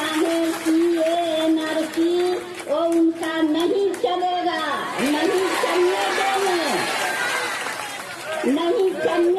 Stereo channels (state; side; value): identical; both; correlation 1.00